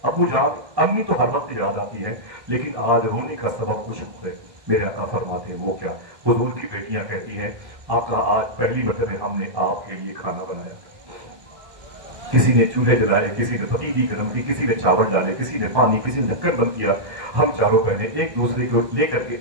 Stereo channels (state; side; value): late; left; 1.1 ms